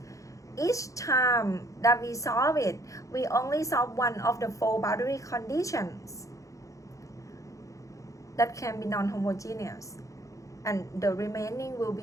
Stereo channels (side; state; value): right; late; 0.16 ms